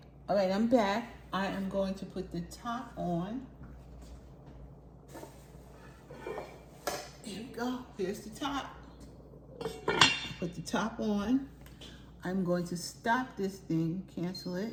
all right, I'm back. I am going to put the top on. Here we go, here's the top. Put the top on. I'm going to stop this thing, cancel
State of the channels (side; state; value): both; identical; correlation 1.00